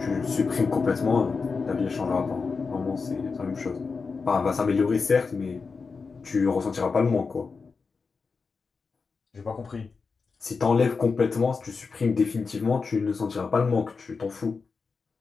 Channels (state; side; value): quieter; right; 4.8 dB